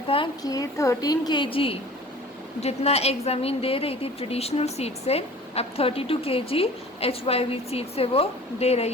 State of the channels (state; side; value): normal; both; correlation 0.44